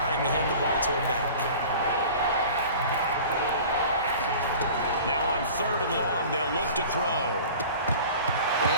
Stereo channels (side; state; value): both; inverted; correlation -0.41